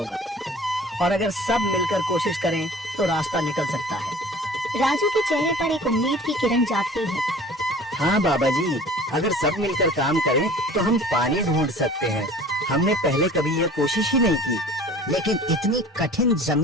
और अगर सब मिलकर कोशिश करें तो रास्ता निकल सकता है। राजू के चेहरे पर एक उम्मीद की किरण जागती है। हाँ बाबा जी, अगर सब मिलकर काम करें तो हम पानी ढूंढ सकते हैं। हमने पहले कभी ये कोशिश ही नहीं की। लेकिन इतनी कठिन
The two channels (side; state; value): both; normal; correlation 0.45